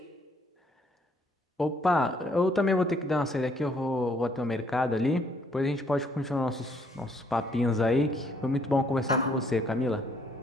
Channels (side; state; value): both; normal; correlation 0.66